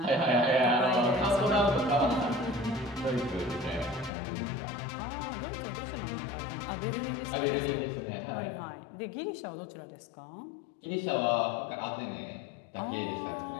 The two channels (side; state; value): right; drops out; at 4.1 s